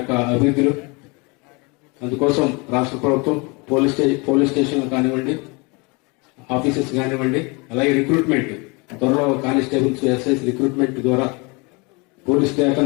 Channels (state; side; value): quieter; right; 28.6 dB